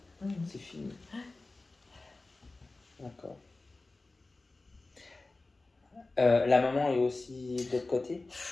Mhm. C'est fini. D'accord. La maman est aussi de l'autre côté.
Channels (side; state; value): right; quieter; 3.3 dB